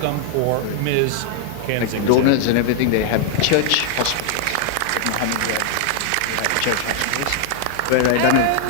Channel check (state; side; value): different; both; correlation 0.00